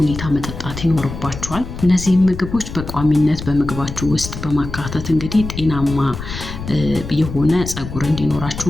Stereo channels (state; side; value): noise; left; rumble, 9 dB below the sound